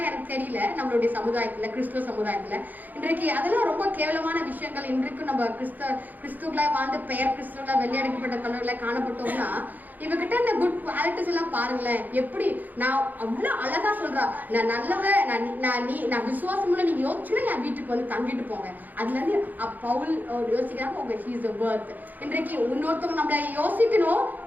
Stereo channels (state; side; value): late; left; 0.084 ms